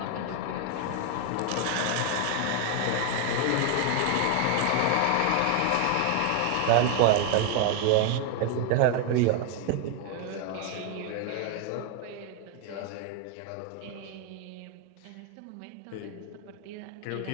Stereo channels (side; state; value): both; different; correlation 0.01